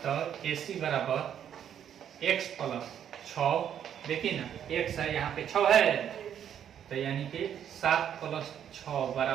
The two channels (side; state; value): left; quieter; 9.4 dB